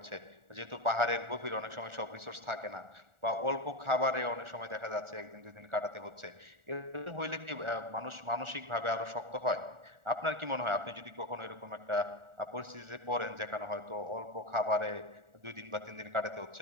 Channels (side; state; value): left; late; 1.4 ms